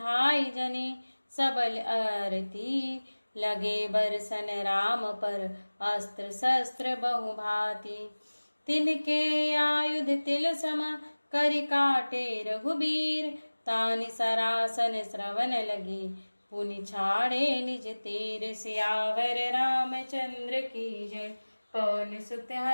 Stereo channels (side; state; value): both; inverted; correlation -1.00